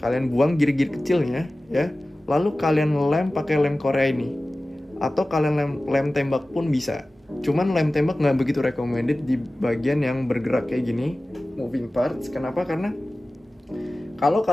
Kalian buang gear-gear kecilnya ya. Lalu kalian lem pakai lem Korea ini. Atau kalian lem tembak pun bisa. Cuman lem tembak nggak begitu recommended di bagian yang bergerak kayak gini, moving parts. Kenapa? Karena kalau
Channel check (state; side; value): normal; both; correlation 0.97